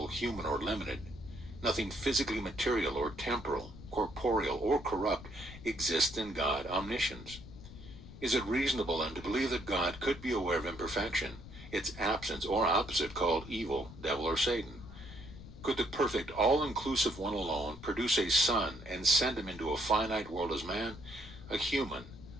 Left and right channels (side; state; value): left; noise; rumble, 15 dB below the sound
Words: human, or limited, nothing physically material or temporal, corporeal, or corrupt exists in God omniscience. Is it reasonable then to believe that God could be aware of imperfection, its absence or opposite called evil, devil, or Satan? Could the perfect, all-inclusive one alone produce a son and send him into a finite world as man, a human,